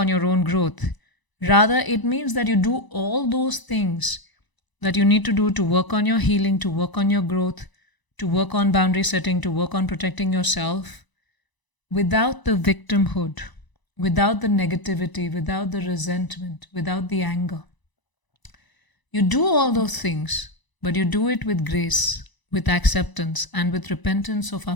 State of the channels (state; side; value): late; right; 1.0 ms